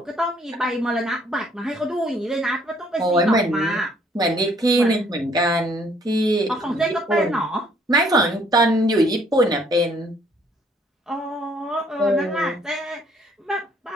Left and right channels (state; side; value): normal; both; correlation 0.63